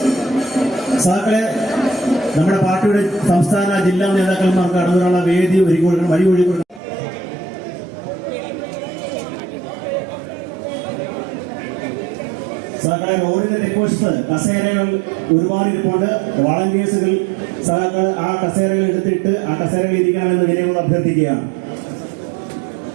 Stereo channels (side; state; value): left; drops out; at 6.8 s